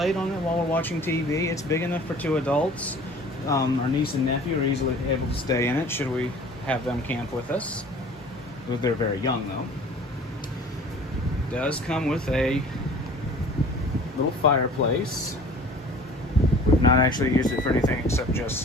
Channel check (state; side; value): normal; both; correlation 0.47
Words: on it while we're watching TV. It's big enough for 2 adults. Our niece and nephew are easily able to stay in it should we have them camp with us. They're very young though. It does come with a little fireplace. We've not actually used it for anything except